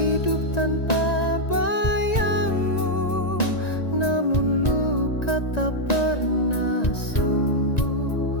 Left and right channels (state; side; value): late; right; 1.9 ms